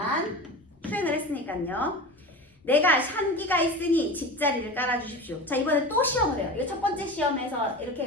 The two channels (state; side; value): normal; both; correlation 0.30